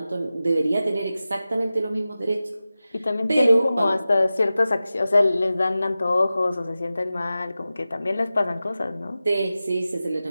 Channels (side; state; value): both; inverted; correlation -0.95